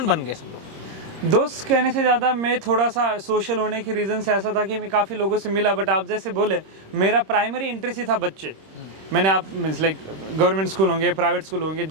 बन गए? दोस्त कहने से ज़्यादा मैं थोड़ा सा सोशल होने की रीज़न से ऐसा था कि मैं काफ़ी लोगों से मिला। बट आप जैसे बोले, मेरा प्राइमरी इंटरेस्ट ही था बच्चे। मैंने आप मीन्स लाइक गवर्नमेंट स्कूल होंगे, प्राइवेट स्कूल होंगे,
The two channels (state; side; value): late; left; 26 ms